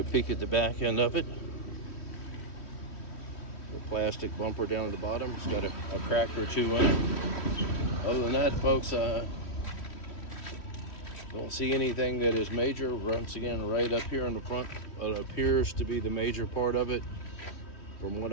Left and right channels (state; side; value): late; right; 3.1 ms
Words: a peek at the back end of it. The plastic bumper down at the bottom. It's got a crack or two in it. Other than that, folks, don't see anything that is major. Once again, right up here in the front, it appears to be the major part of it from what